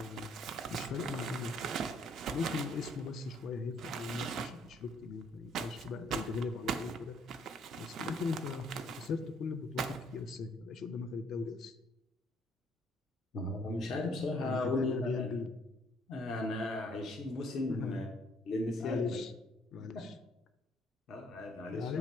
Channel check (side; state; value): both; normal; correlation 0.65